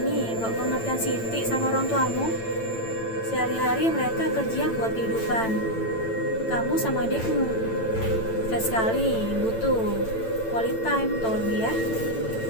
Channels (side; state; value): right; late; 9.0 ms